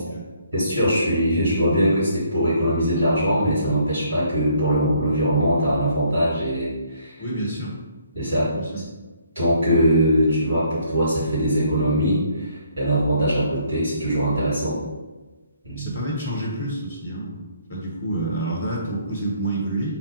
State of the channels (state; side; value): inverted; both; correlation -0.65